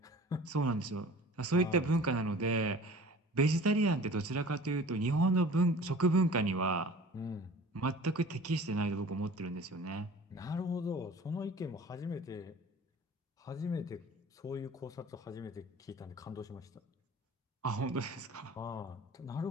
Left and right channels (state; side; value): normal; both; correlation 0.44